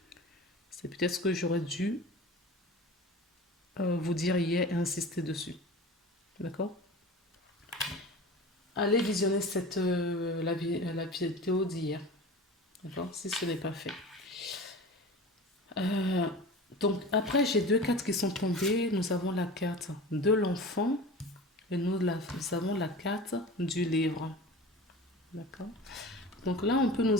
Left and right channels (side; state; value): both; normal; correlation 0.35